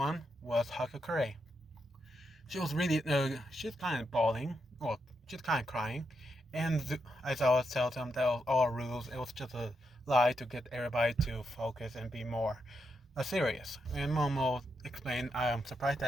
was Hakakure. She was really, she's kind of bawling, well, she's kind of crying. And as I always tell them, that was all rules. It was just a lie to get everybody to focus and be more serious. And Momo explained, I am surprised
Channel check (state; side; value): normal; both; correlation 0.83